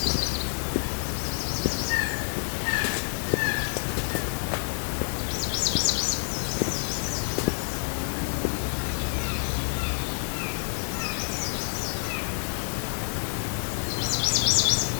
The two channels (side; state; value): right; silent; digital silence